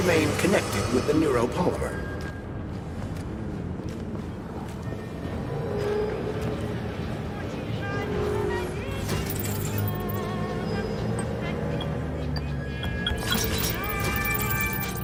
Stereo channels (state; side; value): identical; both; correlation 1.00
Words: connected with the neuropolymer.